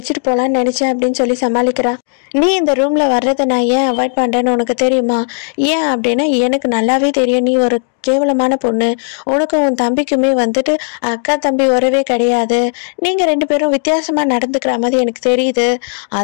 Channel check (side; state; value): right; silent; digital silence